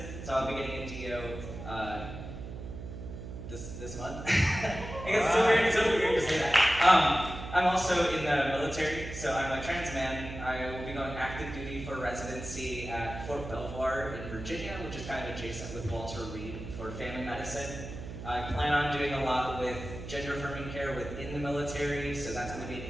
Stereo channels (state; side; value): noise; right; hum, 9 dB below the sound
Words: so I'll be getting a DO this month. I guess it's so weird to say that. I'm also in the military, so I'm a trans man. I will be going active duty for residency at Fort Belvoir in Virginia, which is kind of adjacent with Walter Reed for family medicine. I plan on doing a lot with gender affirming care within the military, so that's going to be an